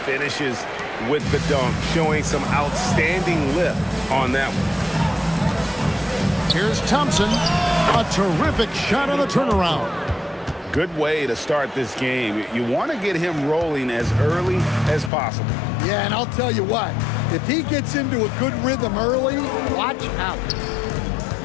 finishes with the dunk, showing some outstanding lift on that one. Here's Thompson. A terrific shot on the turnaround. Good way to start this game. You want to get him rolling as early as possible. Yeah, and I'll tell you what, if he gets into a good rhythm early, watch out.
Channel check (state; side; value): drops out; right; at 15.1 s